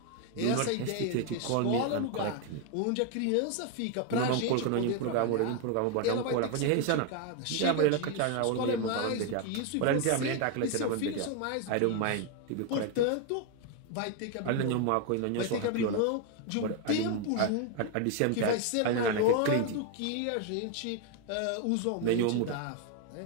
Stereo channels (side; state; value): both; different; correlation 0.01